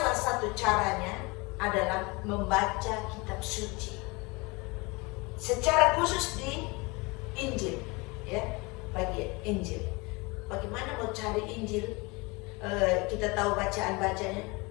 satu caranya adalah membaca kitab suci. Secara khusus di Injil, ya, bagian Injil. Bagaimana mau cari Injil? Kita tahu bacaan-bacanya.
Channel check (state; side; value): quieter; right; 26.4 dB